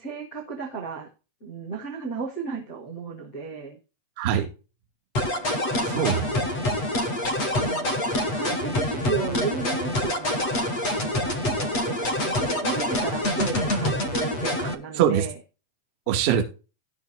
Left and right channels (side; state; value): right; late; 8.2 ms